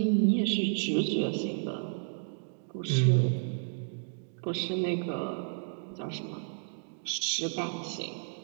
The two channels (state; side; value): silent; left; digital silence